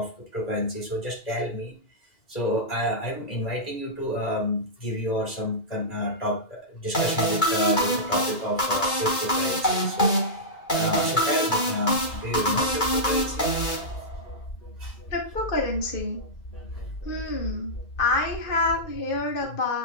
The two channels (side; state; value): right; late; 2.2 ms